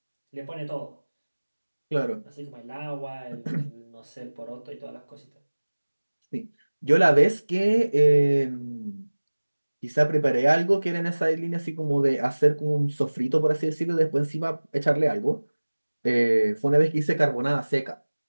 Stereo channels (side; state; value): both; inverted; correlation -1.00